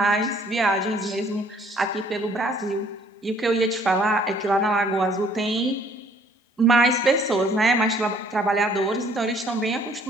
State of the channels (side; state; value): both; normal; correlation 0.60